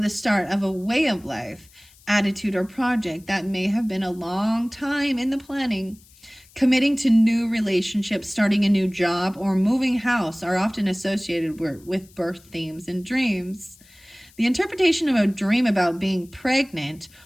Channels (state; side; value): noise; left; hiss, 27 dB below the sound